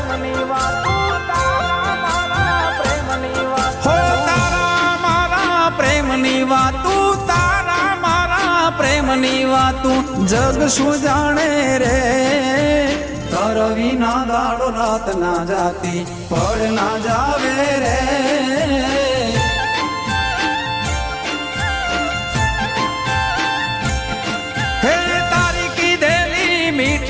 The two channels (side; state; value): both; identical; correlation 1.00